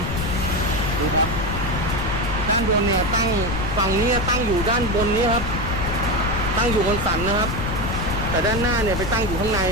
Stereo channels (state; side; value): noise; left; rumble, 4 dB below the sound